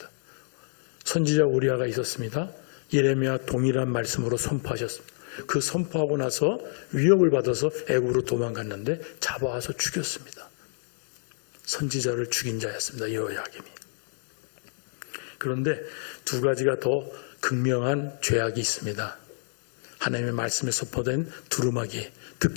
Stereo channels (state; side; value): silent; right; digital silence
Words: 선지자 우리아가 있었습니다. 예레미야 동일한 말씀으로 선포하셨습니다. 그 선포하고 나서 위협을 받아서 애굽으로 도망갔는데 잡아와서 죽였습니다. 선지자를 죽인 자였습니다. 여호야김이. 그런데 두 가지가 더 극명한 죄악이 있습니다. 하나님의 말씀에 선포된 두루마기,